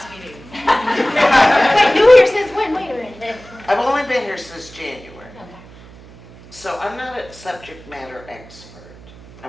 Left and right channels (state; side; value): noise; right; hum, 21 dB below the sound